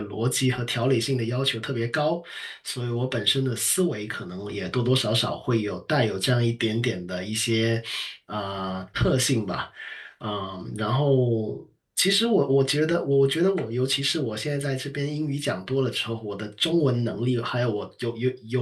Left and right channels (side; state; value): both; identical; correlation 1.00